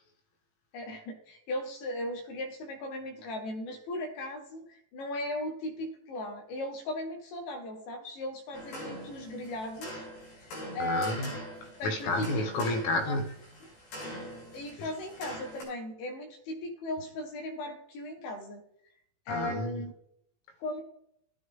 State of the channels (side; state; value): right; late; 18 ms